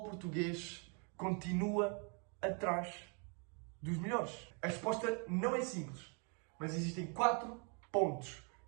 português continua atrás dos melhores? A resposta não é simples, mas existem 4 pontos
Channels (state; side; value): quieter; left; 37.2 dB